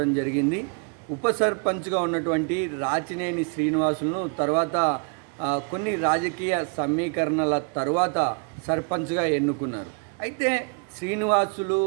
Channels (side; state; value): left; quieter; 38.6 dB